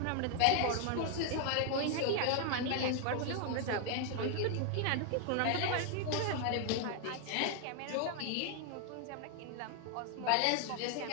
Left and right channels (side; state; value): both; different; correlation 0.00